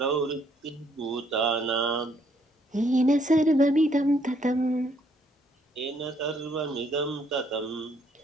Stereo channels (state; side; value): normal; both; correlation 0.68